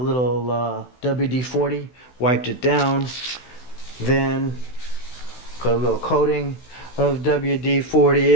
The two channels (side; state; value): right; late; 16 ms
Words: WD-40, wiped it down, then put a little coating of